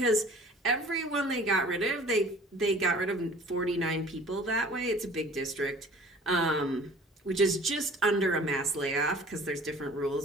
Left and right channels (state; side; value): normal; both; correlation 0.48